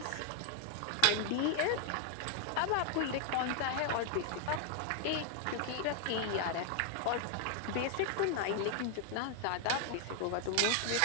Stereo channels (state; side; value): different; both; correlation 0.00